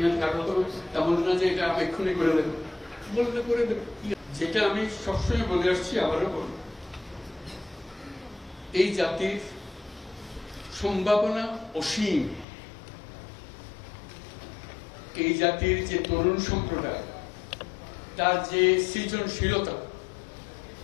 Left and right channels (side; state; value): right; drops out; at 12.5 s